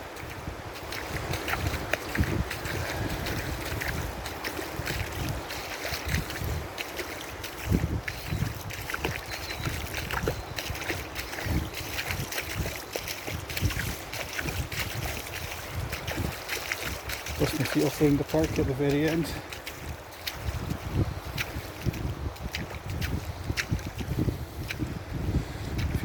Dust my feet off around the park at the very end. I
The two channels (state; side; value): identical; both; correlation 1.00